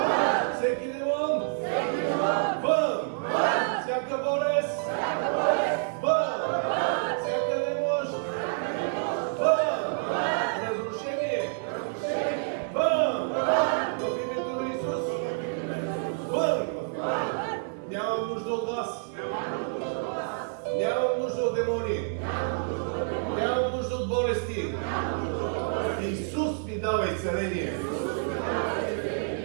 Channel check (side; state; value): left; silent; 59 dB below the other